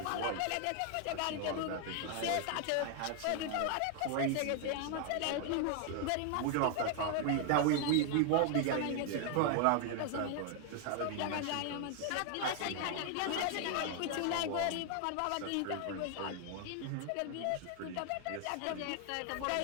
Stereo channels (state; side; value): different; both; correlation 0.00